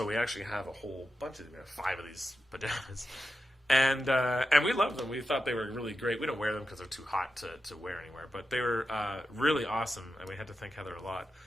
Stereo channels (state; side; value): normal; both; correlation 0.90